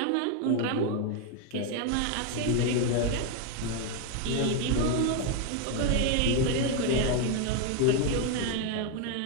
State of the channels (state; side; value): different; both; correlation 0.01